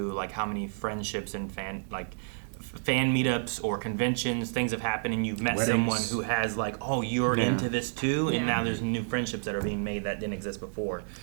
like how many friendships and fan meetups or conventions, things have happened, and you've met someone who has like, oh, you're into this too, and now there's new friendships that are being made that didn't exist before.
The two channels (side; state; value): left; silent; digital silence